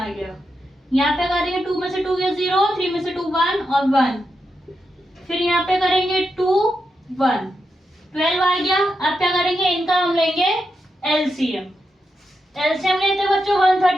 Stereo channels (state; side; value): normal; both; correlation 0.86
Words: गया। यहाँ पे करेंगे 2 में से 2 गया 0, 3 में से 2 1 और 1, फिर यहाँ पे करेंगे 2 1 12 आ गया। अब क्या करेंगे, इनका हम लेंगे एलसीएम। एलसीएम लेते बच्चों